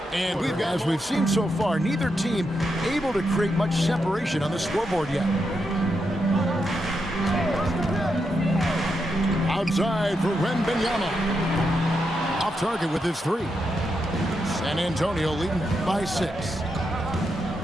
And as we've seen so far, neither team able to create much separation on the scoreboard yet. Outside for Wembanyama. Off target with his three. San Antonio leading by 6.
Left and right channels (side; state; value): both; normal; correlation 0.84